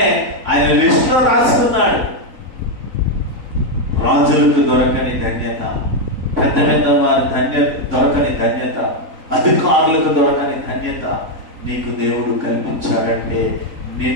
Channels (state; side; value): late; left; 3.9 ms